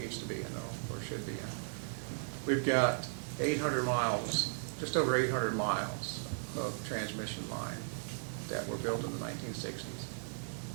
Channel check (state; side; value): silent; left; digital silence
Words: needs to be in or should be in. We've got 800 miles, just over 800 miles of transmission line that were built in the 1960s.